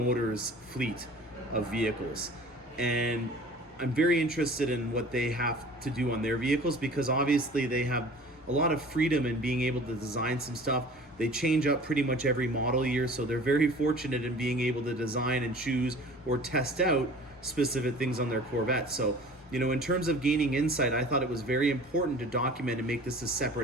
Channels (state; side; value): normal; both; correlation 0.44